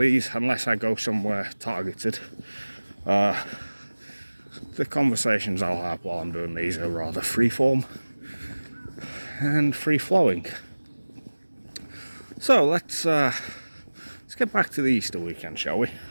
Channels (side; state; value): both; inverted; correlation -1.00